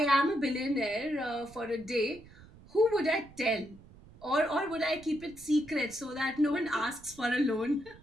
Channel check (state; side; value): noise; right; rumble, 22 dB below the sound